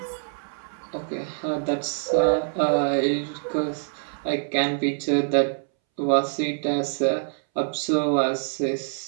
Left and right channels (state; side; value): silent; left; 62 dB below the other